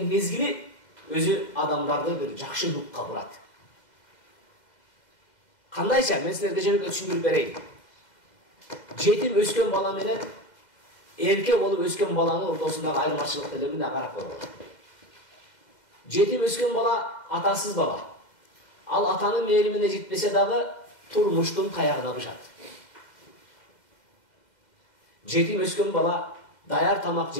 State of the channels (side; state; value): right; late; 2.0 ms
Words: мезгили өзү адамдарды бир жакшы рухка бурат. Кандайча мен силерге жөнөкөй түшүндүрүп берейин. Жетим өскөн бала менен эрке болуп өскөн баланын ортосундагы айырмачылыкты эле мына карап көрөлү. Жетим өскөн бала атасыз бала. Ал атанын мээримине жетпесе дагы турмуштун таягына бышат. Жетим өскөн бала даяр тамак